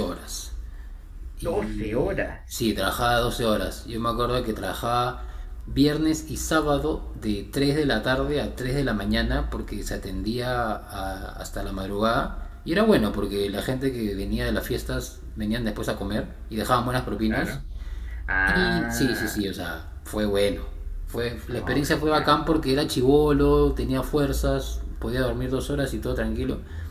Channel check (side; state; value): both; identical; correlation 1.00